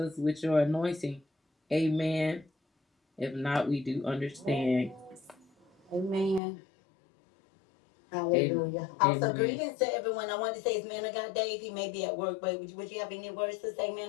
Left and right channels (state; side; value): drops out; right; at 6.4 s